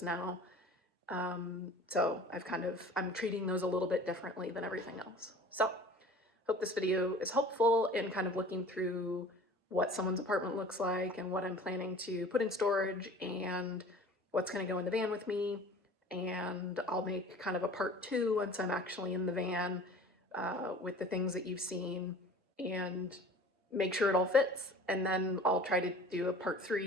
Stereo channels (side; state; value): both; normal; correlation 0.44